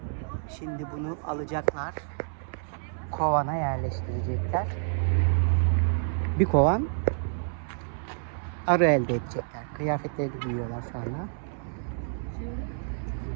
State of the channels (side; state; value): left; silent; 59 dB below the other